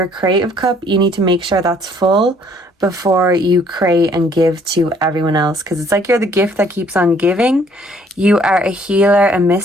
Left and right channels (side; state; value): both; normal; correlation 0.61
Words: creative cup, you need to make sure that's full before you create and give to everyone else, because it's like you're the gift that keeps on giving. You are a healer, a